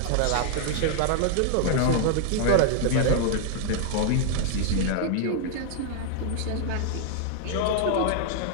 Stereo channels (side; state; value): both; different; correlation 0.00